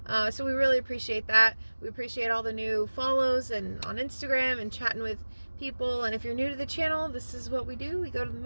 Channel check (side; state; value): both; inverted; correlation -1.00